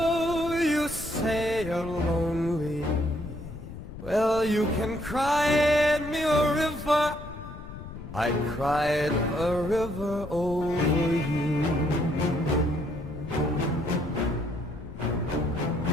you say you're lonely. Well, you can cry me a river. I cried a river over you.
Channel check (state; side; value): noise; left; rumble, 12 dB below the sound